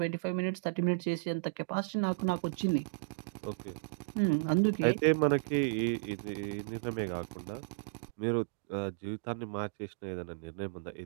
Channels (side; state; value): left; quieter; 37.5 dB